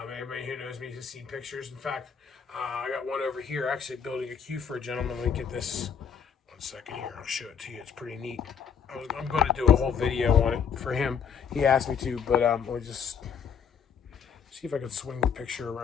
who knows me has seen pictures. In fact, I got one over here actually building a cue for a gentleman. Let me get this 1 second here. I'll show it to you. It's pretty neat. I'm going to do a whole video on it for him. He asked me to, but let me just see if I can swing the picture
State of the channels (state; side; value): quieter; right; 7.1 dB